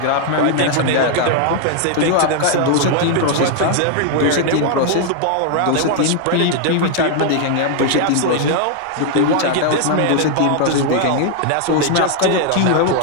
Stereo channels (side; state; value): both; different; correlation 0.00